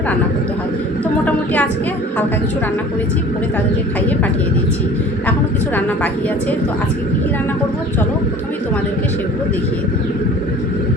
রান্না করতে হয়। তো মোটামুটি আজকে হালকা কিছু রান্না করেছি, করে তাদেরকে খাইয়ে পাঠিয়ে দিয়েছি। এখনও কিছু রান্না বাকি আছে। তো আজকে কী কী রান্না করব, চলো প্রথমেই তোমাদেরকে সেগুলো দেখিয়ে দিই।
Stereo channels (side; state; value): both; normal; correlation 0.45